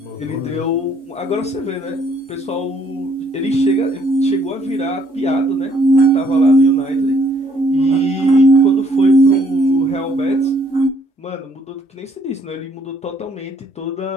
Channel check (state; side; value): normal; both; correlation 0.65